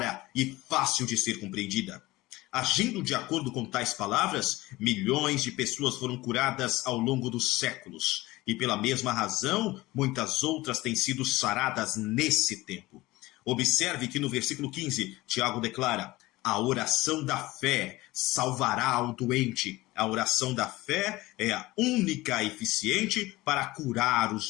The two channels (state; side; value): quieter; right; 19.3 dB